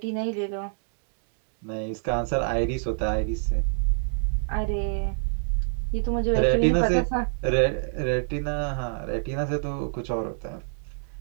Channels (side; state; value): left; silent; digital silence